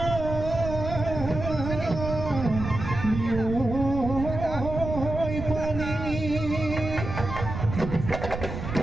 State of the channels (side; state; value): right; noise; rumble, 6 dB below the sound